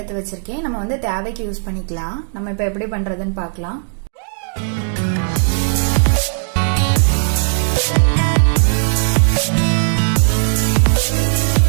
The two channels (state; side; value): silent; left; digital silence